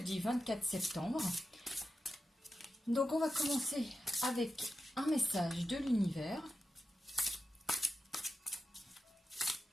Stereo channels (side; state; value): both; normal; correlation 0.90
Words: 24 septembre. Donc on va commencer avec un message de l'univers.